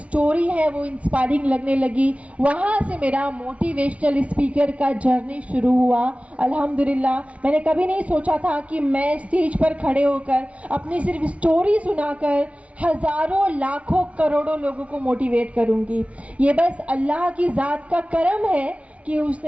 है वो इंस्पायरिंग लगने लगी। वहाँ से मेरा मोटिवेशनल स्पीकर का जर्नी शुरू हुआ। अल्हम्दुलिल्लाह, मैंने कभी नहीं सोचा था कि मैं स्टेज पर खड़े होकर अपनी सिर्फ स्टोरी सुनाकर हज़ारों, लाखों, करोड़ों लोगों को मोटिवेट करूँगी। ये बस अल्लाह की ज़ात का करम है कि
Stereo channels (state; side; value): late; left; 0.064 ms